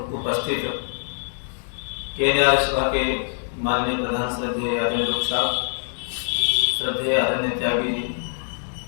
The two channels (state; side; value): silent; right; 61 dB below the other